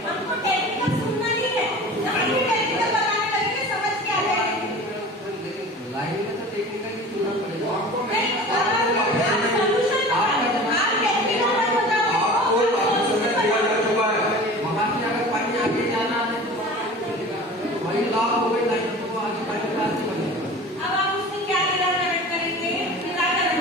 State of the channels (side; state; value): both; normal; correlation 0.38